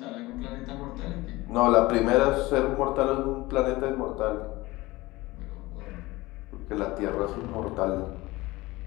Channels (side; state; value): right; quieter; 20.3 dB